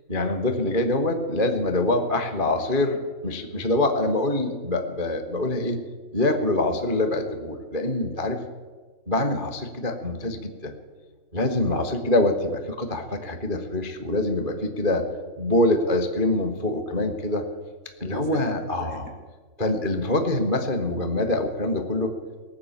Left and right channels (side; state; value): left; late; 2.5 ms